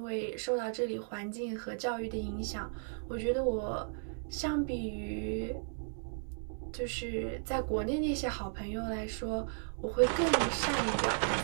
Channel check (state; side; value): silent; left; digital silence